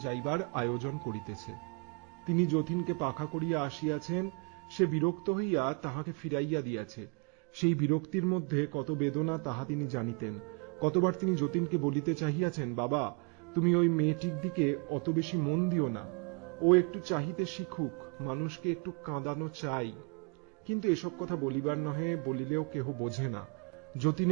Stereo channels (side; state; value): left; quieter; 34.2 dB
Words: যাইবার আয়োজন করিতেছে। তিনি যতীনকে পাখা করিয়া আসিয়াছেন, সে বিরক্ত হইয়া তাহাকে ফিরাইয়া দিয়াছে। সেই বিরক্তির মধ্যে কত বেদনা তাহা তিনি জানিতেন। কতবার তিনি যতীনকে বলিতে চাহিয়াছেন, বাবা, তুমি ওই মেয়েটির দিকে অত বেশি মন দিও না, ও একটু চাহিতে শিখুক, মানুষকে একটু কাঁদানো চাই। কিন্তু এসব কথা বলিবার নহে, বলিলেও কেহ বোঝে না।